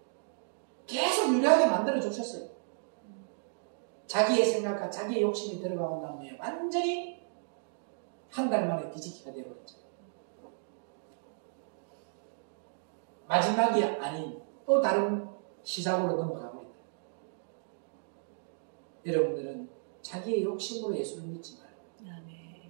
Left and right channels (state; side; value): silent; left; digital silence